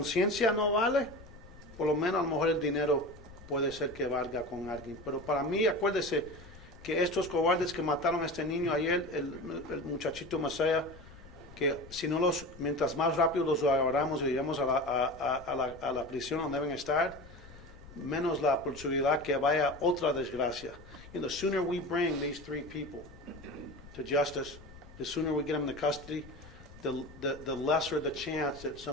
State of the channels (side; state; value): left; noise; rumble, 19 dB below the sound